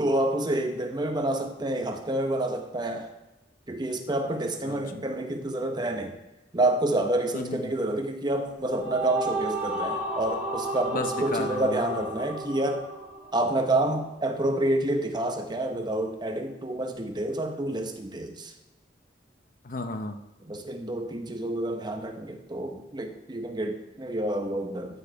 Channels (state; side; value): normal; both; correlation 0.50